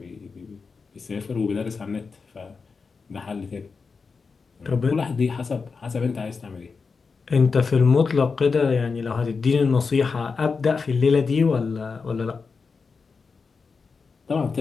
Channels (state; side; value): quieter; right; 4.9 dB